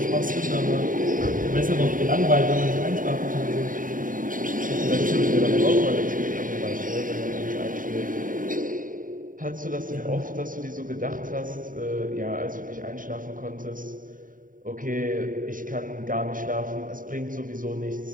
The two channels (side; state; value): left; late; 0.39 ms